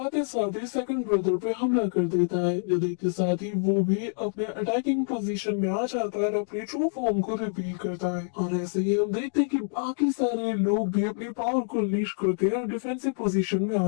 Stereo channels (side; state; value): right; silent; digital silence